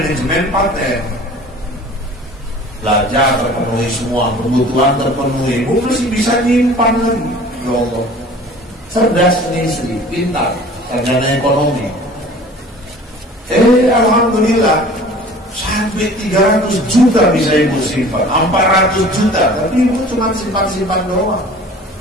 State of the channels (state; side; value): normal; both; correlation 0.45